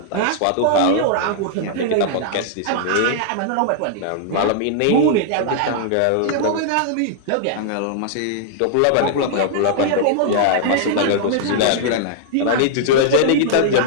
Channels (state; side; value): different; both; correlation -0.01